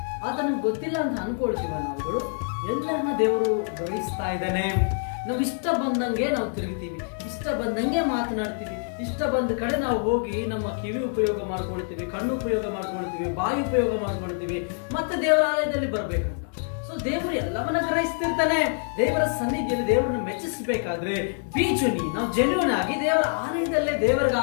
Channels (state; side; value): silent; right; 58 dB below the other